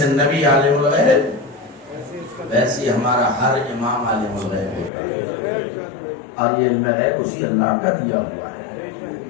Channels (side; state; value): right; drops out; at 4.9 s